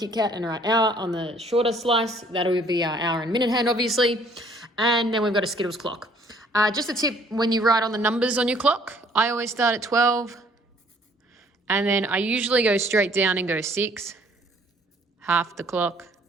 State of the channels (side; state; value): both; normal; correlation 0.59